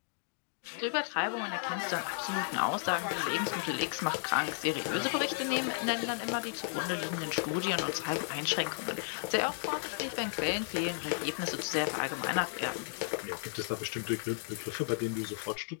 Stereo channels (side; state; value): right; silent; digital silence